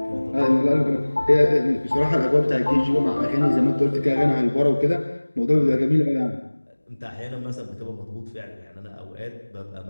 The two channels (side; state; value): both; inverted; correlation -1.00